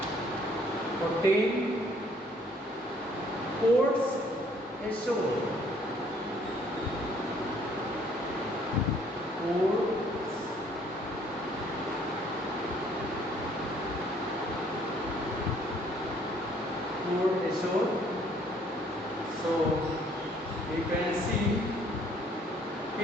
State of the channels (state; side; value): normal; both; correlation 0.62